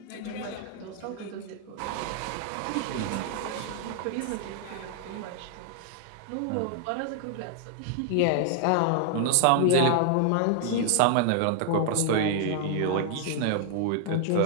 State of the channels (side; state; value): both; different; correlation 0.00